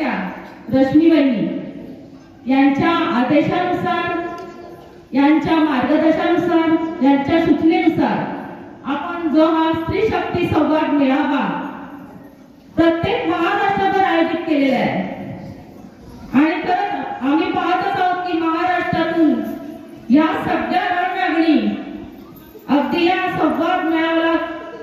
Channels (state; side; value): identical; both; correlation 1.00